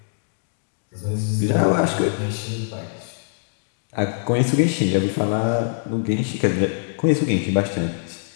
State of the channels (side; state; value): right; silent; digital silence